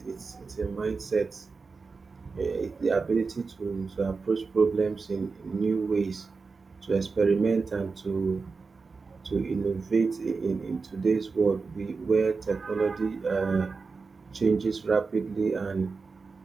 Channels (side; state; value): left; quieter; 4.5 dB